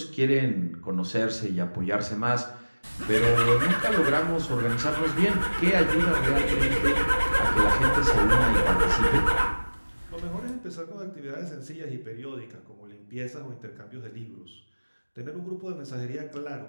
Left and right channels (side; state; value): both; inverted; correlation -1.00